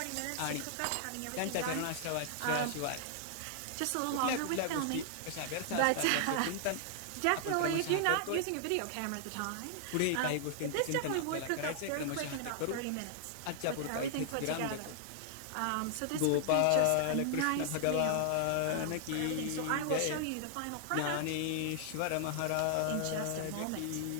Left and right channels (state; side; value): different; both; correlation -0.01